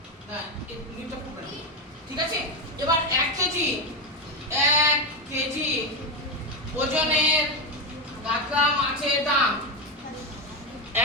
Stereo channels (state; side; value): normal; both; correlation 0.11